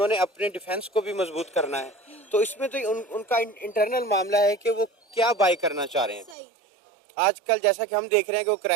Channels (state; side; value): drops out; left; at 6.4 s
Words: अपने डिफेंस को भी मजबूत करना है। तो इसमें तो उनका इंटरनल मामला है कि वो क्या बाय करना चाह रहे हैं। आजकल जैसा कि हम देख रहे हैं कि वो